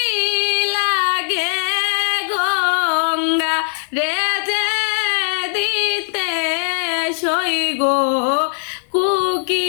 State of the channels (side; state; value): right; silent; 67 dB below the other